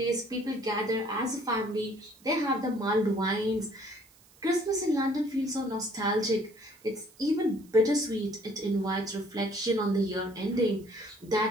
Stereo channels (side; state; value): right; noise; hiss, 28 dB below the sound